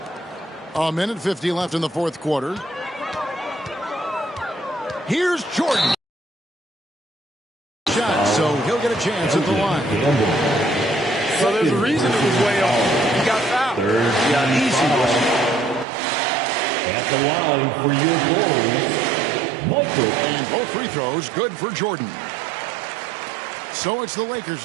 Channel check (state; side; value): drops out; left; at 15.9 s